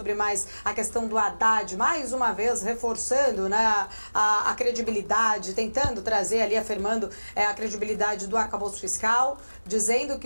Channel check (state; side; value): inverted; both; correlation -1.00